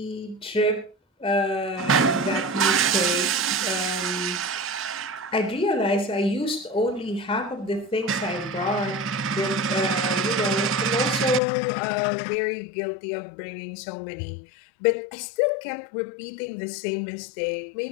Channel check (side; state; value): right; drops out; at 11.4 s